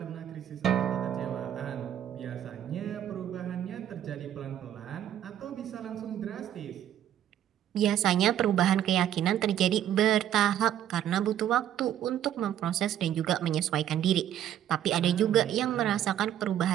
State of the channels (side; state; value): left; quieter; 10.9 dB